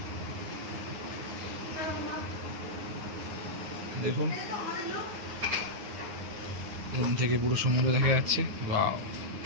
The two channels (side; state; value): left; late; 9.6 ms